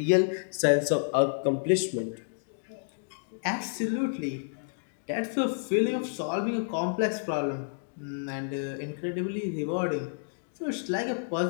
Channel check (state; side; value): silent; right; digital silence